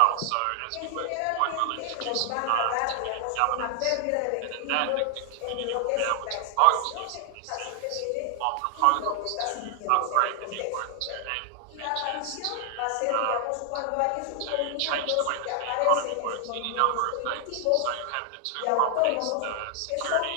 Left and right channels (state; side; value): different; both; correlation 0.00